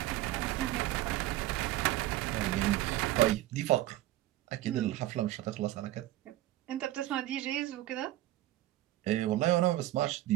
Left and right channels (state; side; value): quieter; left; 15.1 dB